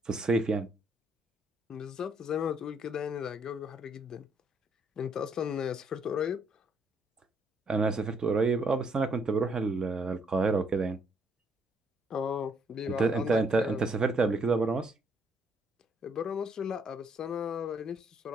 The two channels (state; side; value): normal; both; correlation 0.69